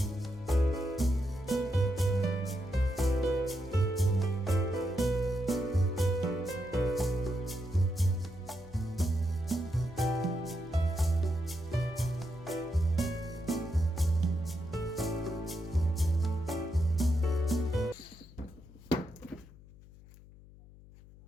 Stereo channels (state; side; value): noise; left; hum, 21 dB below the sound